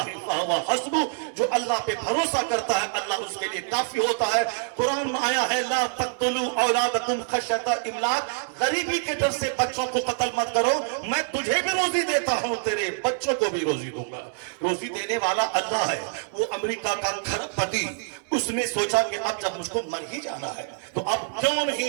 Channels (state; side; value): silent; left; digital silence